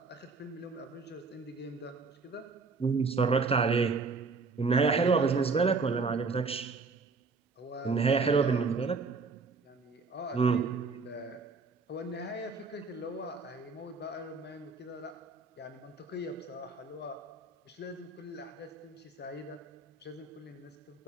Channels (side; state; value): left; quieter; 4.3 dB